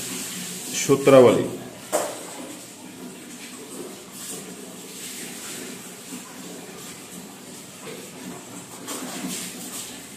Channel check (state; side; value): identical; both; correlation 1.00